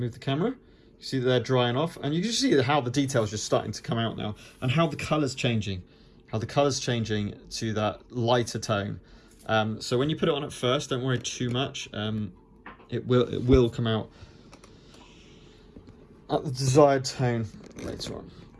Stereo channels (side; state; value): both; identical; correlation 1.00